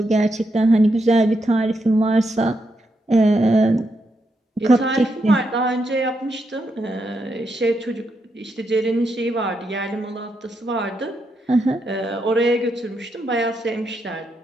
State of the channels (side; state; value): both; normal; correlation 0.82